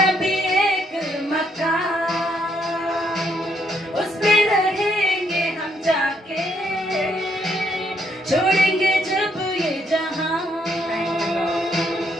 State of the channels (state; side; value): normal; both; correlation 0.73